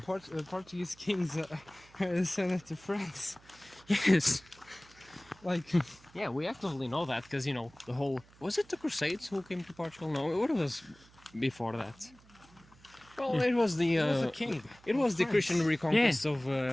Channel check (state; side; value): noise; right; hum, 26 dB below the sound